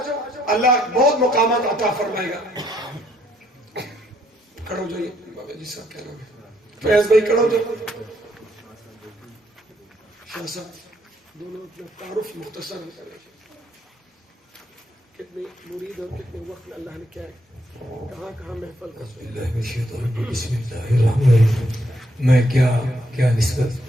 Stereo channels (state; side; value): normal; both; correlation 0.72